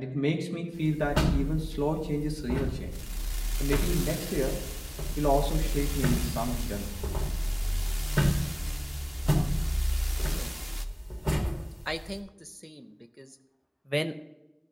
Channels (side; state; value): both; identical; correlation 1.00